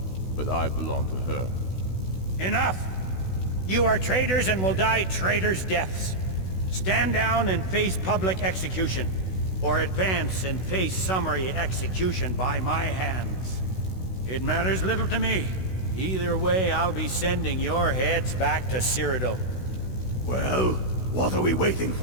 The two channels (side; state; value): right; late; 16 ms